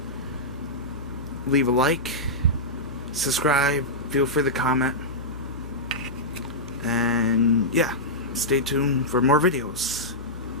Leave a like, subscribe, feel free to comment, and yeah, stay tuned for more videos.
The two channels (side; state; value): both; normal; correlation -0.12